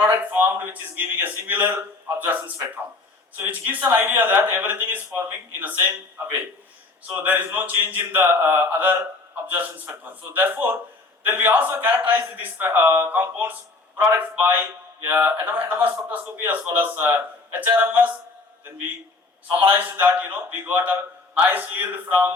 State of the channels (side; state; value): right; quieter; 3.6 dB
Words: formed which is giving a similar absorption spectrum. So which gives an idea that everything is forming in the same way. So there is no change in the other absorption spectrum. So therefore, then we also characterize these compounds products by NMR spectroscopy as well as HRMS. Then we summarized that we got a nice yield